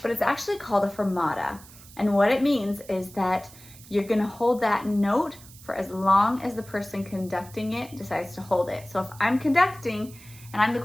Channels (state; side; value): noise; right; hiss, 20 dB below the sound